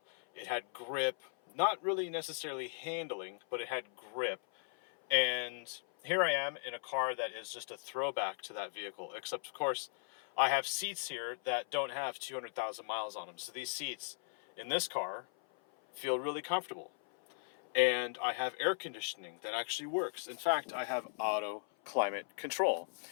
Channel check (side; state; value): right; silent; 53 dB below the other